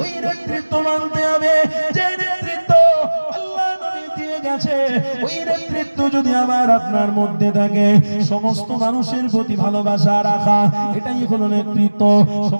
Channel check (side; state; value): both; inverted; correlation -1.00